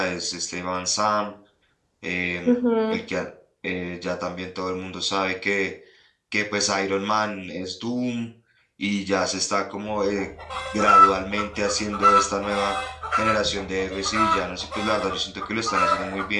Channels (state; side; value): identical; both; correlation 1.00